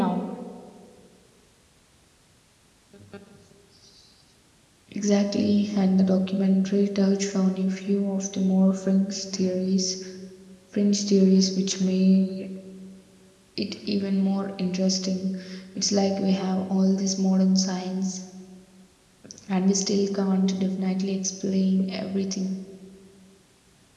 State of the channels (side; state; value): both; identical; correlation 1.00